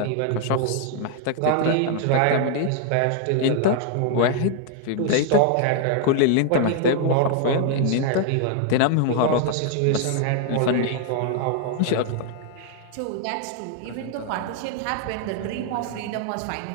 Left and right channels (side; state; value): both; different; correlation 0.00